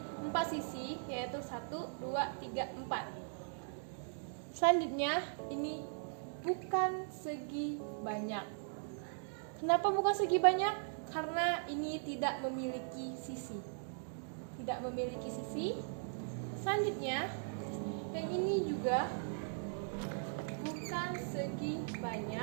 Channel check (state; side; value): silent; left; digital silence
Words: 4 sisi, yaitu 1, 2, 3, 4. Selanjutnya, ini bukan segi banyak. Kenapa bukan segi banyak? Karena ini tidak memiliki sisi. Tidak memiliki sisi. Selanjutnya, yang ini juga bukan segi